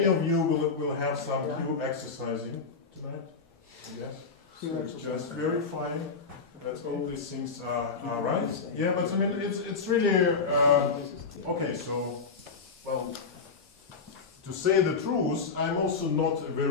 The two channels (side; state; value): right; quieter; 4.8 dB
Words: of you will have some q exercising tonight, yes? So just verifying that all these things are right. Yeah, but I mean, it's really, okay, so, well, to say the truth, I'm also not a